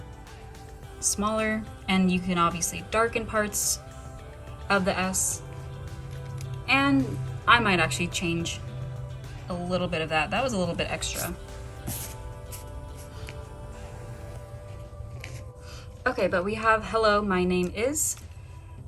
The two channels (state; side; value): identical; both; correlation 1.00